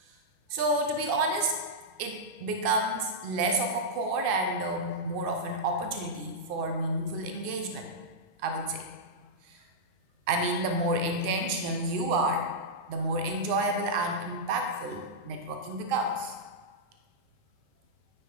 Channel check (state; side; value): late; left; 2.6 ms